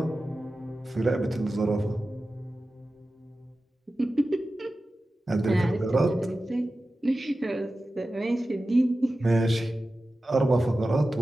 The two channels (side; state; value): both; normal; correlation 0.94